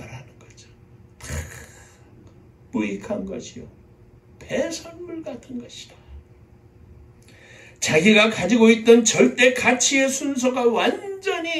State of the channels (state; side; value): identical; both; correlation 1.00